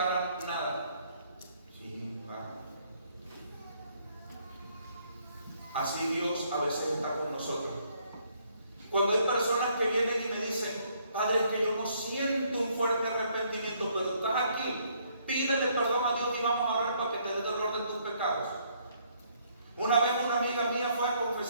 nada? Sí, va. Así Dios a veces está con nosotros. Cuando hay personas que vienen y me dicen, Padre, es que yo no siento un fuerte arrepentimiento, pero estás aquí, pídele perdón a Dios y vamos a orar para que te dé dolor de tus pecados. Una vez una amiga mía fue a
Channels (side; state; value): both; inverted; correlation -0.68